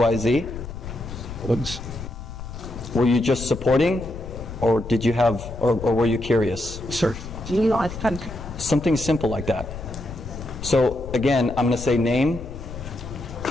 Were you just supporting, or did you have, or were you curious? Sir. Something simple like that. So again, I'm going to say name,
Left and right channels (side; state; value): left; noise; rumble, 11 dB below the sound